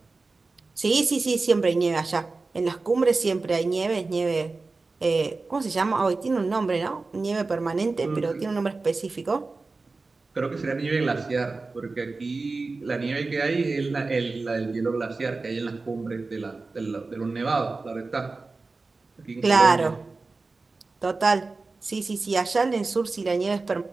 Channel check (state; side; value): quieter; left; 3.7 dB